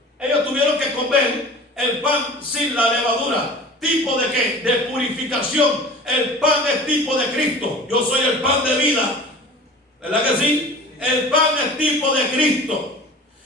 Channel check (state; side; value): normal; both; correlation 0.40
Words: ellos tuvieron que comer el pan sin la levadura. ¿Tipo de qué? De purificación. El pan es tipo de Cristo. Yo soy el pan de vida. ¿Verdad que sí? El pan es tipo de Cristo.